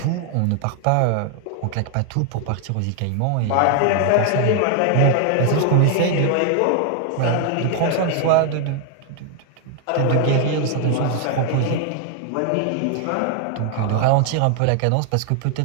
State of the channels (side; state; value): both; different; correlation 0.00